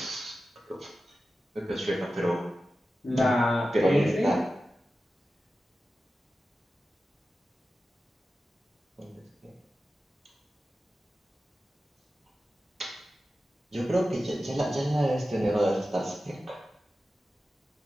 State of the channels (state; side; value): normal; both; correlation 0.93